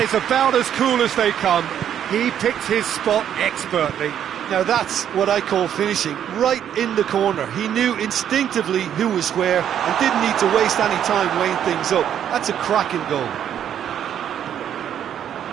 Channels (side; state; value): left; quieter; 9.7 dB